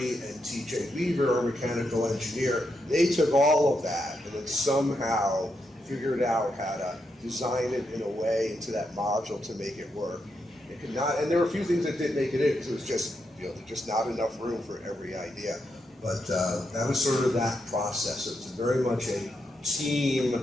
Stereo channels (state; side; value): normal; both; correlation 0.83